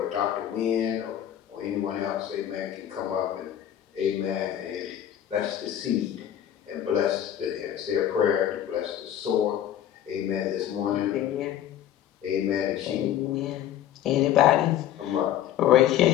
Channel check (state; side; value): quieter; right; 11.1 dB